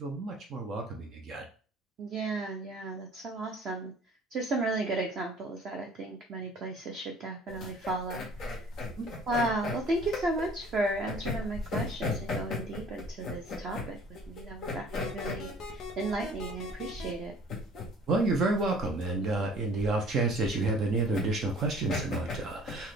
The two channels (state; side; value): normal; both; correlation 0.51